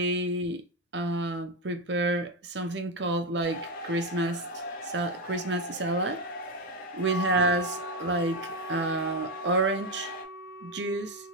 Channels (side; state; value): both; normal; correlation 0.09